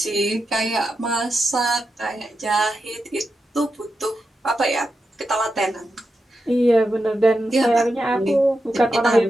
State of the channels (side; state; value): both; normal; correlation 0.88